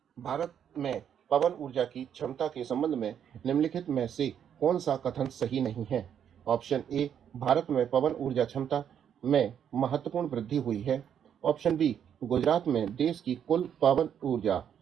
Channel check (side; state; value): left; quieter; 8.8 dB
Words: भारत में पवन ऊर्जा की क्षमता के संबंध में निम्नलिखित में से कौन सा कथन सही नहीं है? ऑप्शन ए, भारत में पवन ऊर्जा क्षमता में महत्वपूर्ण वृद्धि हुई है। ऑप्शन बी, गुजरात में देश की कुल पवन ऊर्जा